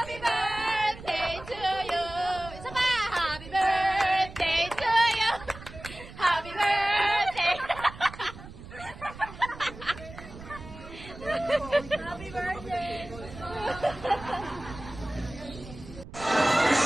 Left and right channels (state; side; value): noise; right; rumble, 15 dB below the sound